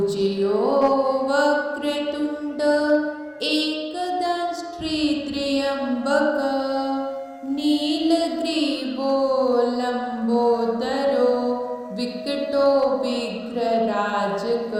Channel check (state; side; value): identical; both; correlation 1.00